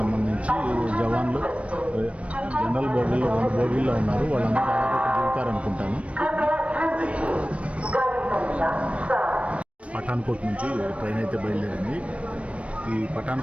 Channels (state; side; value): late; left; 0.063 ms